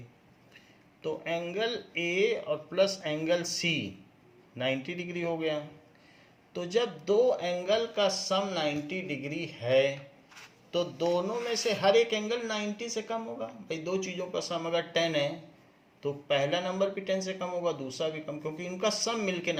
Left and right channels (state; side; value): identical; both; correlation 1.00